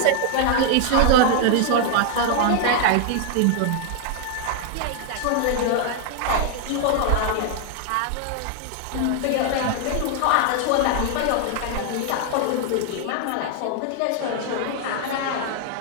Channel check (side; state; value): both; different; correlation 0.00